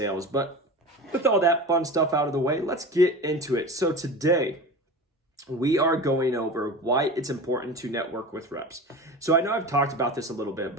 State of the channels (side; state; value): both; normal; correlation 0.31